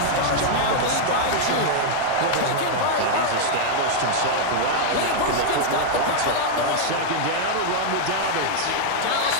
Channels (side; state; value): both; different; correlation -0.01